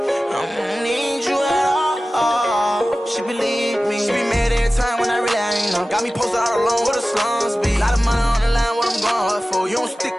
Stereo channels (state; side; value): normal; both; correlation 0.96